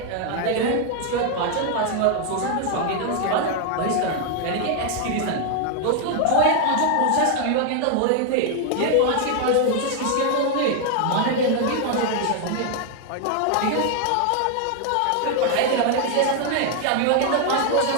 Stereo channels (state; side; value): different; both; correlation 0.00